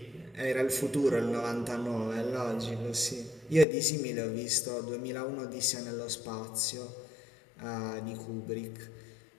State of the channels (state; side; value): drops out; right; at 3.7 s